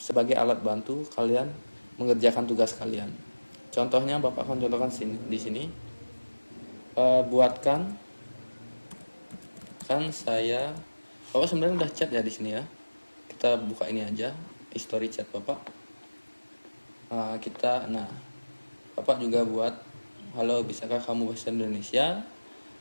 alat bantu kalian mengerjakan tugas kalian. Contohnya Bapak akan contohkan di sini. Buatkan, kan saya, Bapak sebenarnya udah chat ya di sini ya. Kita buka ini aja, history chat Bapak. Bapak juga buat, halo, bisakah kamu bahasa Indonesia?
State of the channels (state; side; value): inverted; both; correlation -1.00